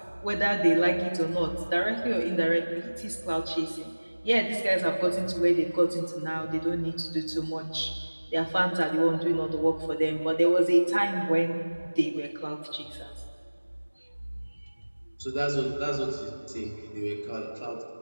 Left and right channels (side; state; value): both; inverted; correlation -1.00